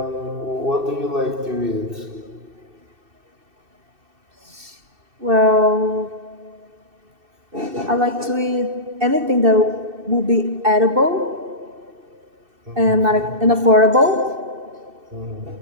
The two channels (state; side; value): late; left; 2.6 ms